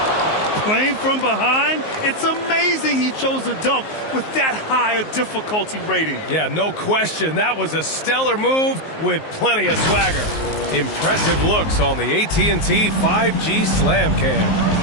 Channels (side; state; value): right; late; 19 ms